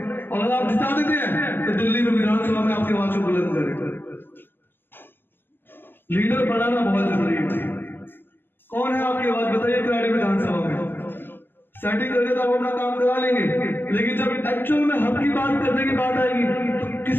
और अगर आप जिता देते हैं तो दिल्ली में विधानसभा में आपकी आवाज को बुलंद करें। लीडर बनाना बहुत जरूरी है। कौन है आपकी आवाज बताइए करारी विधानसभा में। सेटिंग करके तो आप अपना काम करा लेंगे, लेकिन जब एक्चुअल में हक की बात करने की बात आएगी तो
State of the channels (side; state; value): right; late; 0.097 ms